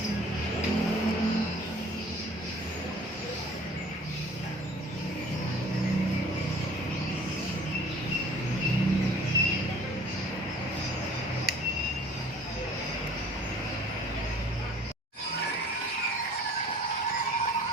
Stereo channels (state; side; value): normal; both; correlation 0.50